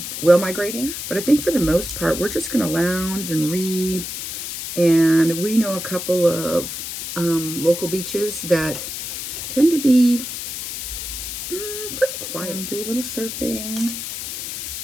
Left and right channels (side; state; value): left; noise; hiss, 6 dB below the sound